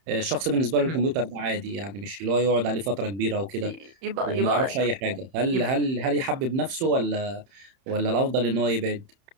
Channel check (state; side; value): late; left; 31 ms